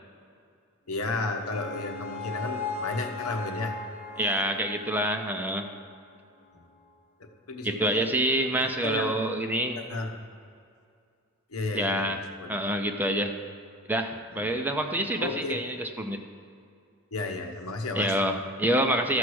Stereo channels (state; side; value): normal; both; correlation 0.33